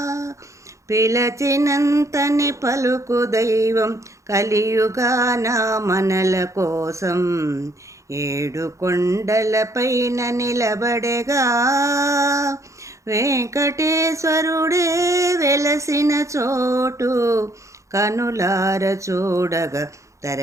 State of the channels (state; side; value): late; left; 0.15 ms